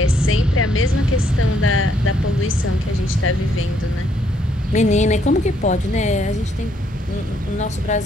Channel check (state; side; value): normal; both; correlation 0.70